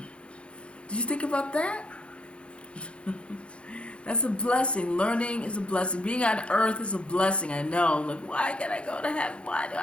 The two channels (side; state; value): right; late; 0.058 ms